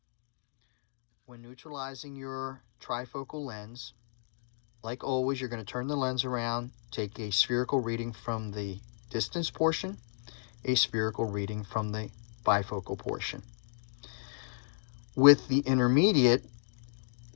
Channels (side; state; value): right; silent; digital silence